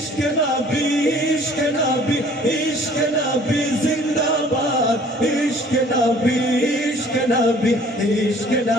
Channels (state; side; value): normal; both; correlation 0.53